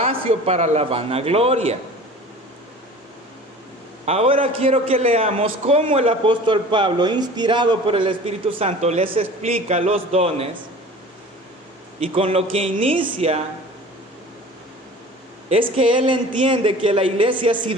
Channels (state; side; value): normal; both; correlation 0.42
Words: para la vanagloria. Ahora quiero que leamos cómo el apóstol Pablo, inspirado por el Espíritu Santo, les explica los dones. Y con lo que inicia es que él entiende que la iglesia ha